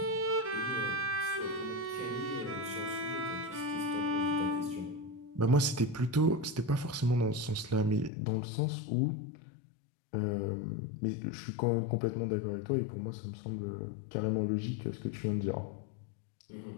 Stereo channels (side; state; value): right; drops out; at 8.1 s